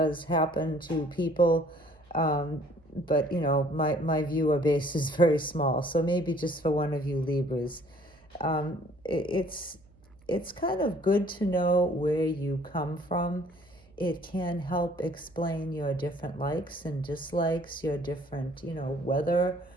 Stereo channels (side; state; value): right; noise; hum, 28 dB below the sound